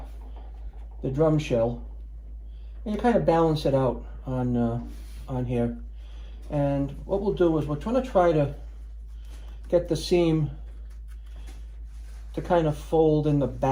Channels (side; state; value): both; identical; correlation 1.00